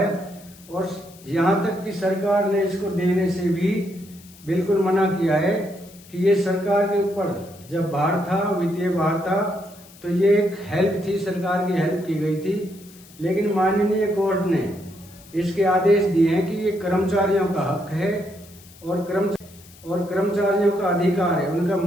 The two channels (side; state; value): left; noise; hiss, 23 dB below the sound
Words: और यहाँ तक कि सरकार ने इसको देने से भी बिल्कुल मना किया है कि ये सरकार के ऊपर जब भार था, वित्तीय भार था, तो ये एक हेल्प थी, सरकार की हेल्प की गई थी। लेकिन माननीय कोर्ट ने इसके आदेश दिए हैं कि ये कर्मचारियों का हक है और कर्मचारियों का अधिकार है, उनका